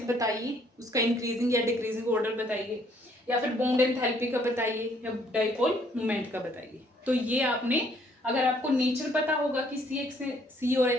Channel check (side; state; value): both; normal; correlation 0.65